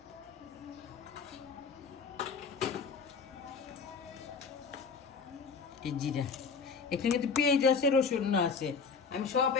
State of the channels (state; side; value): quieter; right; 5.3 dB